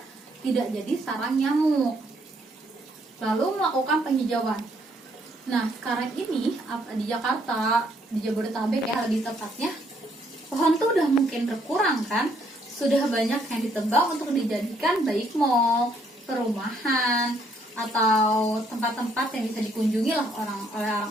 tidak jadi sarang nyamuk. Lalu melakukan penghijauan. Nah sekarang ini di Jakarta, di Jabodetabek ya lebih tepatnya, pohon tuh udah mungkin berkurang kan. Sudah banyak yang ditebang untuk dijadikan baik mall, perumahan, atau tempat-tempat yang bisa dikunjungi lah oleh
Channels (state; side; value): normal; both; correlation 0.69